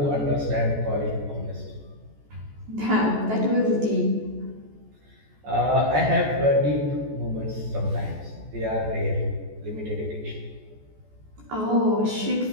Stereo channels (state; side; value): late; left; 14 ms